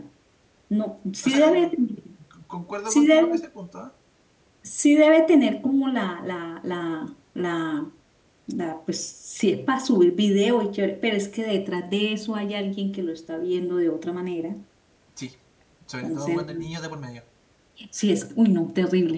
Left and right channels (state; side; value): identical; both; correlation 1.00